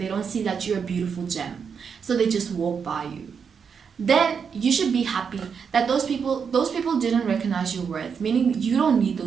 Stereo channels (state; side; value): quieter; left; 6.5 dB